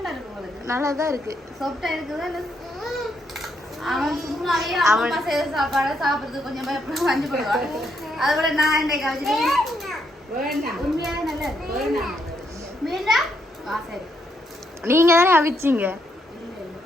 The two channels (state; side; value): normal; both; correlation 0.76